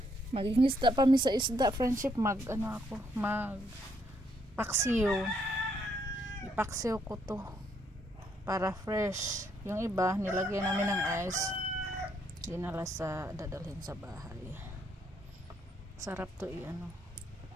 Magingisda pa mi sa isda friendship. Mag paksiw. Ipaksiw ko to para fresh. Yung iba nilagyan namin ng ice, dinala dadalhin sa bahay. Sarap to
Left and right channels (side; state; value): both; normal; correlation 0.73